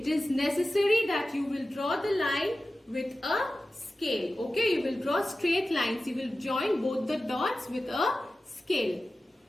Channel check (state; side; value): normal; both; correlation 0.95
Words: is necessary that you will draw the line with a scale. Okay, you will draw straight lines. You will join both the dots with a scale.